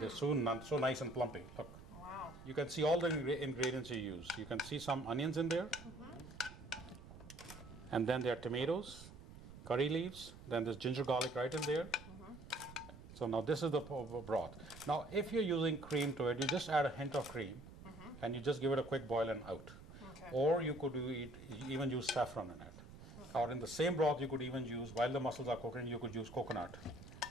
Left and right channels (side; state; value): right; noise; rumble, 16 dB below the sound